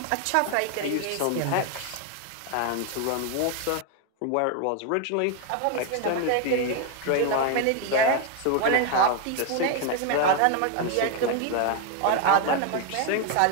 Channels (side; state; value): both; different; correlation 0.01